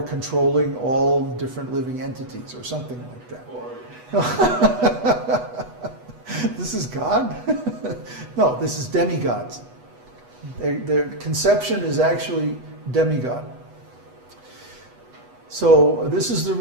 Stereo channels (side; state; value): left; late; 8.1 ms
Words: controlling all different living entities, or something like that. This is God? No, this is demigods. Their conception is actually demigod. So this is the